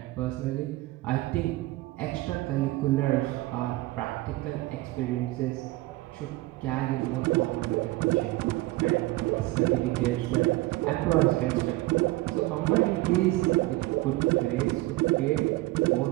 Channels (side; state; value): left; quieter; 19.1 dB